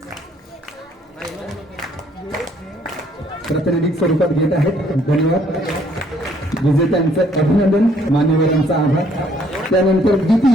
प्रातिनिधिक स्वरूपात घेत आहेत. धन्यवाद. विजेत्यांचं अभिनंदन, मान्यवरांचा आभार. त्यानंतर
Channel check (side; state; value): both; normal; correlation 0.64